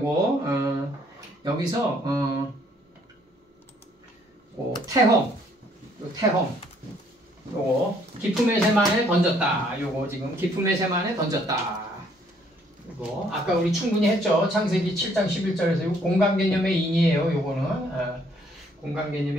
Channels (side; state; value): both; normal; correlation 0.65